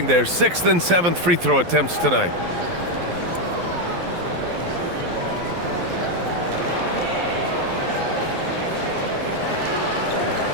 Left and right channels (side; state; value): left; late; 12 ms